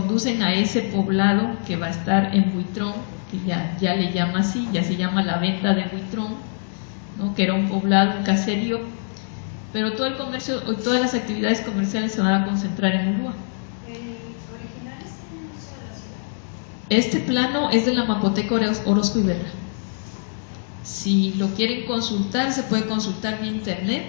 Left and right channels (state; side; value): silent; right; digital silence